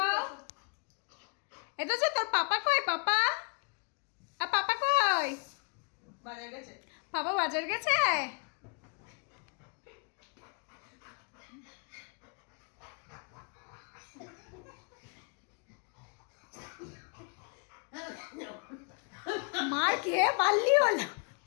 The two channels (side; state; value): right; quieter; 37.9 dB